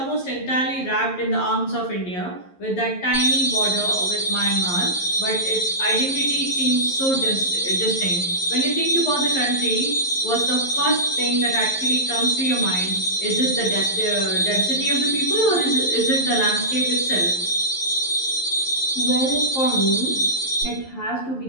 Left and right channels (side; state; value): right; late; 11 ms